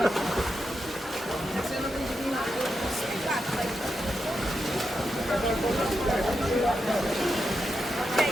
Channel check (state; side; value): normal; both; correlation 0.86